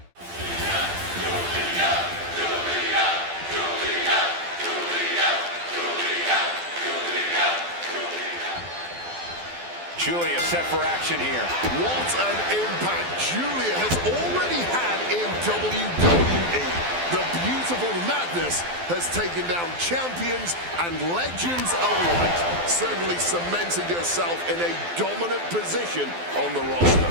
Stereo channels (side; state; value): left; late; 12 ms